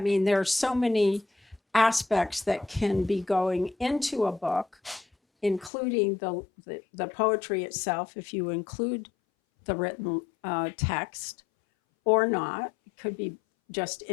there are so many aspects that can be going into a book, including the poetry itself, if you include the written text or not. It could be just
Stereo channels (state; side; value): drops out; right; at 5.7 s